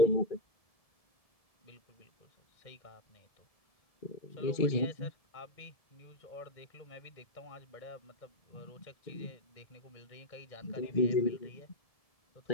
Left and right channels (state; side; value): late; right; 1.7 ms